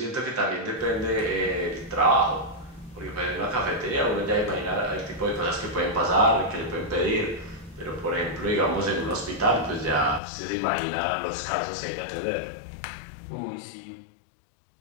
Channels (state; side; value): drops out; right; at 10.2 s